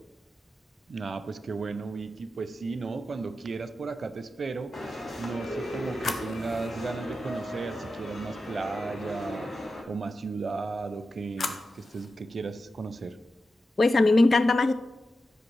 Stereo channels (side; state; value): both; normal; correlation 0.91